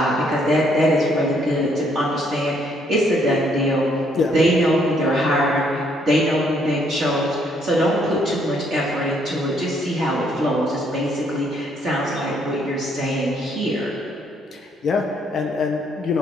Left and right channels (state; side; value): normal; both; correlation 0.69